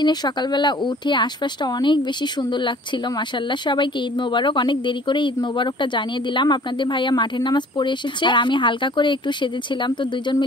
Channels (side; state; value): both; normal; correlation 0.51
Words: সকালবেলা উঠে আশপাশটা অনেক বেশি সুন্দর লাগছিল। মাশাআল্লাহ, সবাইকে ঈদ মোবারক। অনেক দেরি করে ঈদ মোবারকটা জানিয়ে দিলাম। আপনাদের ভাইয়া মাঠের নামাজ পড়ে এসেছে, আর আমি হালকা করে একটু সেজেছিলাম। তো দুইজন